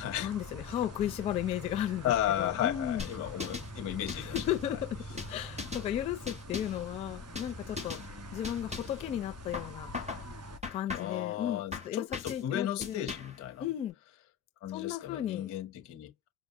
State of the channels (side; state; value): right; quieter; 9.3 dB